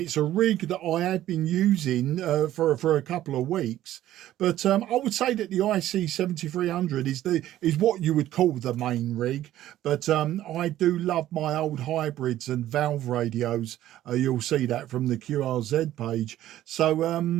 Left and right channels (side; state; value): left; quieter; 13.4 dB